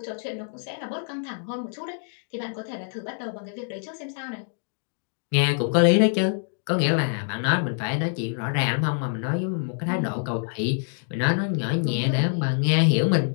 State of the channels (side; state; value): right; silent; digital silence